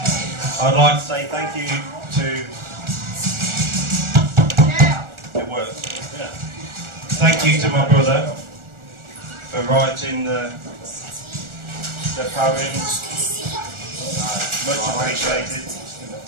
I'd like to say thank you to... It works. Yeah. Thank you to my brother for writing the poems. Much appreciated.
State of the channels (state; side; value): late; left; 1.4 ms